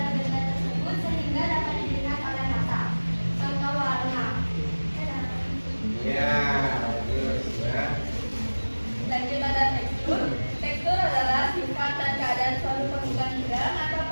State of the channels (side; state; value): both; inverted; correlation -1.00